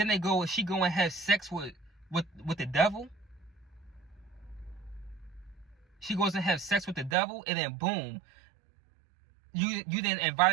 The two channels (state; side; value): drops out; left; at 7.2 s